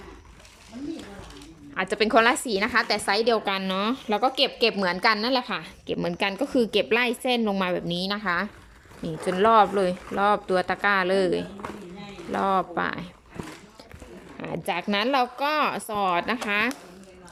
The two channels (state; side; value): identical; both; correlation 1.00